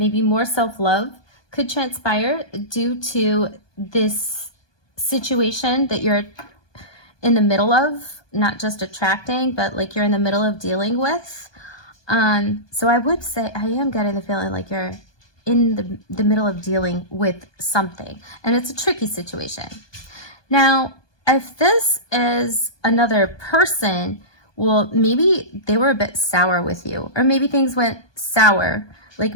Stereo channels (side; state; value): right; late; 1.2 ms